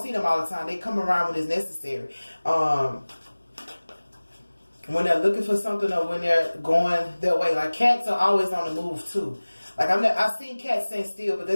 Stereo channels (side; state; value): both; inverted; correlation -1.00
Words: see them all the time. They come around when it's necessary. When they're looking for something or when they're going their way. Like cats are always on the move too. Like I've seen cats stand still, but